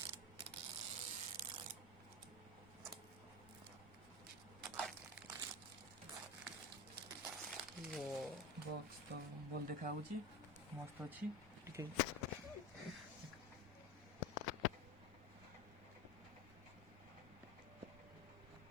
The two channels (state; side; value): normal; both; correlation 0.23